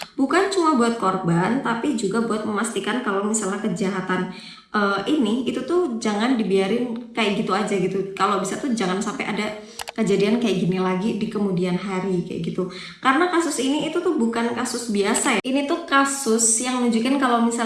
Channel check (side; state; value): both; identical; correlation 1.00